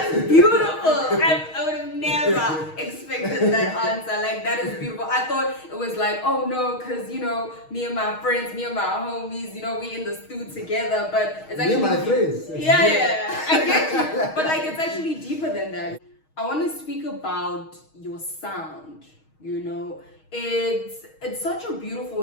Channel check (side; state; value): right; late; 6.3 ms